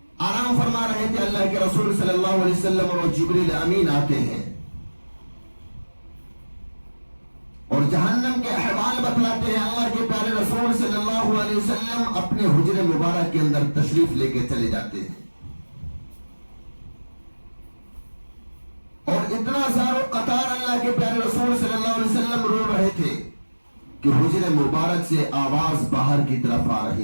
آرام فرما رہے تھے، اللہ کے رسول صلی اللہ علیہ وسلم اور جبریل امین آتے ہیں اور جہنم کے احوال بتلاتے ہیں۔ اللہ کے پیارے رسول صلی اللہ علیہ وسلم اپنے حجرے مبارک کے اندر تشریف لے کے چلے جاتے ہیں اور اتنا سارا قطار اللہ کے پیارے رسول صلی اللہ علیہ وسلم رو رہے تھے کہ حجرے مبارک سے آواز باہر کی طرف آ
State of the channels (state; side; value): inverted; both; correlation -1.00